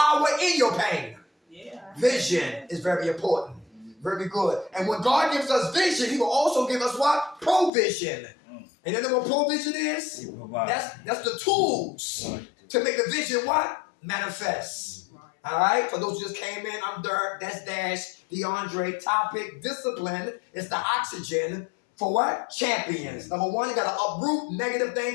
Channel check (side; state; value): right; drops out; at 7.7 s